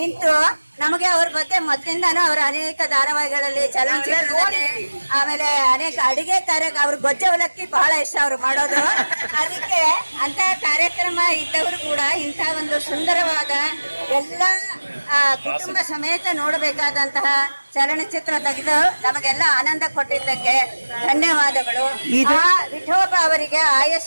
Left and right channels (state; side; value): inverted; both; correlation -1.00